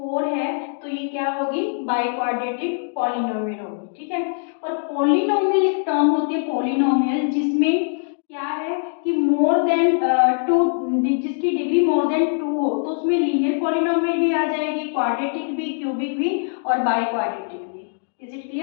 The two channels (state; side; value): silent; right; 62 dB below the other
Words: है। तो ये क्या होगी? बाय क्वाड्रेटिक पॉलिनोमियल होगी। ठीक है, और पॉलिनोमियल एक टर्म होती है पॉलिनोमियल जिसमें क्या है कि मोर देन 2, जिसकी डिग्री मोर देन 2 हो, तो उसमें लीनियर पॉलिनोमियल भी आ जाएगी, क्वाड्रेटिक भी, क्यूबिक भी और बाय क्वाड्रेटिक भी। Is it